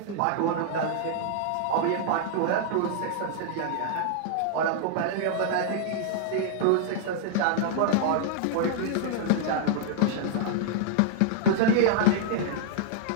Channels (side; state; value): both; different; correlation -0.01